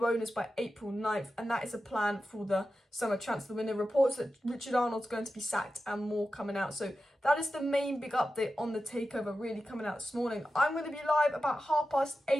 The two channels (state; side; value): normal; both; correlation 0.92